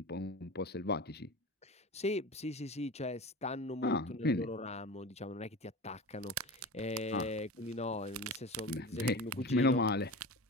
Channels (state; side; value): normal; both; correlation 0.31